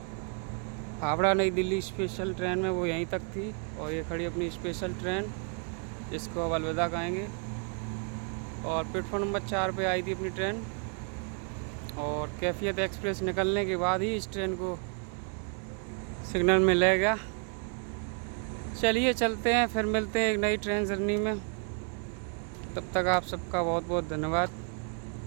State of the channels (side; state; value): left; quieter; 39.9 dB